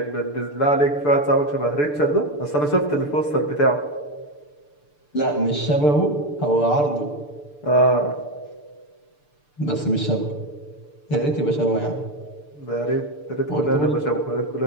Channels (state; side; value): late; right; 6.8 ms